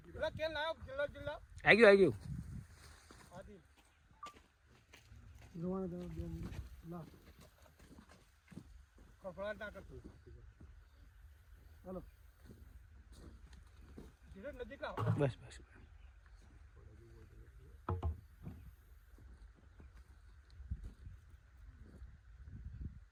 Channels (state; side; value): identical; both; correlation 1.00